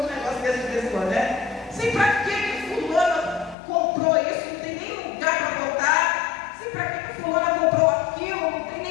uns negócios desse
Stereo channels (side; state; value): right; drops out; at 3.6 s